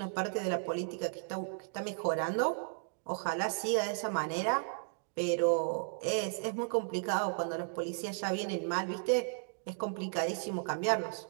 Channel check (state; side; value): silent; left; digital silence